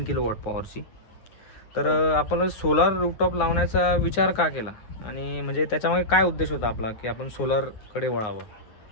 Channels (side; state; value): right; late; 9.5 ms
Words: किलोवॉट पॉवरची. तर आपण सोलार रूफटॉप लावण्याचा विचार का केला आणि म्हणजे त्याच्यामागे काय उद्देश होता आपला की आपण सोलरकडे वळावं?